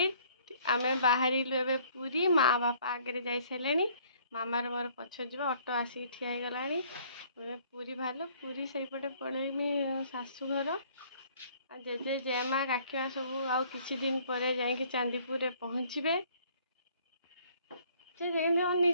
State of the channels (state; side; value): inverted; both; correlation -0.59